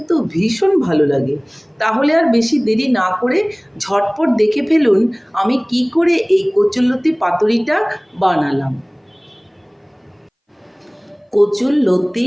ভীষণ ভালো লাগে। তাহলে আর বেশি দেরি না করে ঝটপট দেখে ফেলুন আমি কি করে এই কচুরলতি পাতুরিটা বানালাম। কচুরলতি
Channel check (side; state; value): both; identical; correlation 1.00